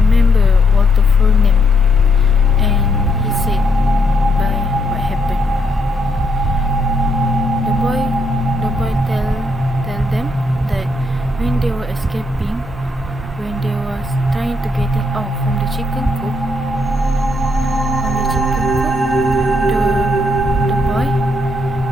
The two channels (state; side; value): normal; both; correlation 0.74